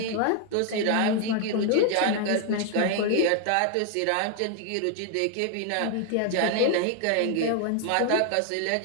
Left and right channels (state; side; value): different; both; correlation 0.00